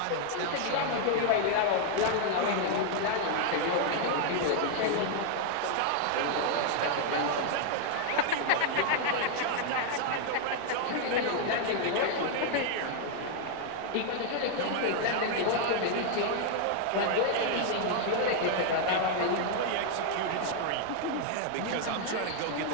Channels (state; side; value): different; both; correlation 0.00